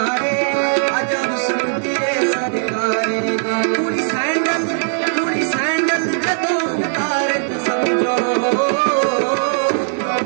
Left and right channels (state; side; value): silent; left; 67 dB below the other